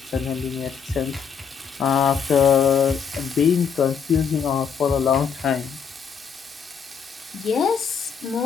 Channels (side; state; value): right; quieter; 6.8 dB